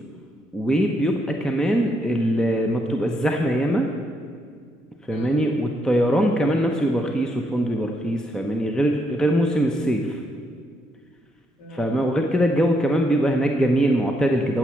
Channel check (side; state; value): both; normal; correlation 0.77